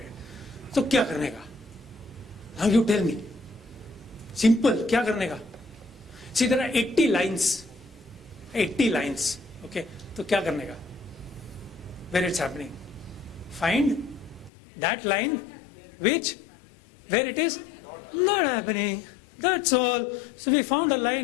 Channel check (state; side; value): drops out; right; at 14.5 s